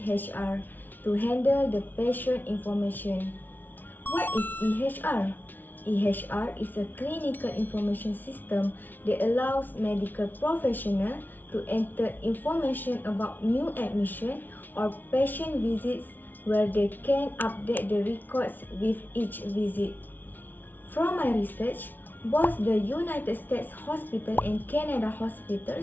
to handle the patient information? What is EHR? EHR is a clinical information system that allows medical professionals to enter information about new admission or patient visits where they can update the records with each visit. From my research, both the United States Hospital and Canada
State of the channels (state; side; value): late; right; 0.086 ms